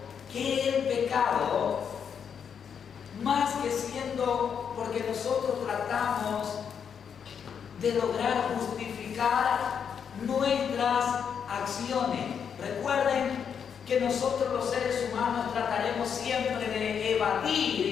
que el pecado, más que siendo, porque nosotros tratamos de lograr justificar nuestras acciones. Recuerden que nosotros los seres humanos trataremos siempre de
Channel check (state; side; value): quieter; right; 7.3 dB